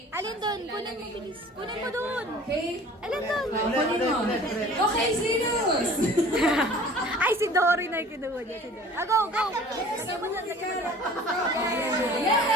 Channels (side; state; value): both; normal; correlation 0.46